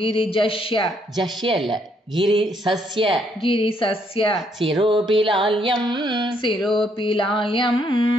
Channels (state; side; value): normal; both; correlation 0.71